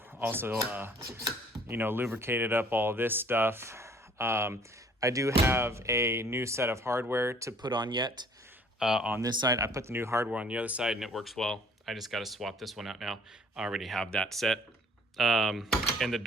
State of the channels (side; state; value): both; normal; correlation 0.56